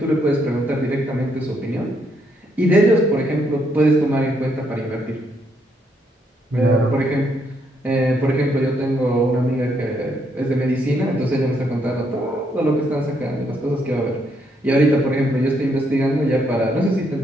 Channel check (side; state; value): both; normal; correlation 0.74